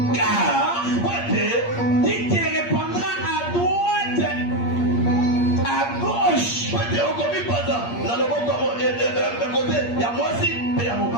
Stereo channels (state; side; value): late; right; 8.5 ms